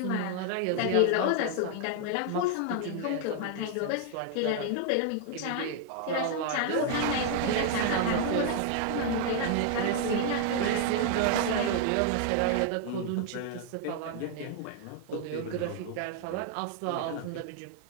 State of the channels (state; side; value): different; both; correlation 0.00